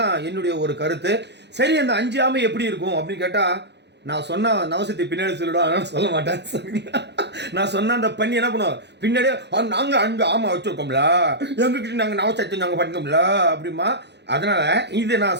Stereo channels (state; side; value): late; left; 0.50 ms